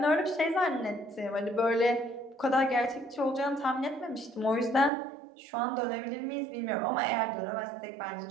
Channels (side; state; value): left; drops out; at 4.9 s